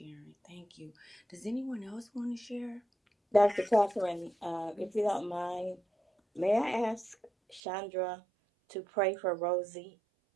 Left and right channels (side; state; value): left; drops out; at 7.6 s